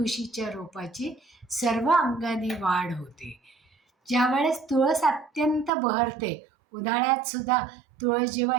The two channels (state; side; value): drops out; left; at 5.7 s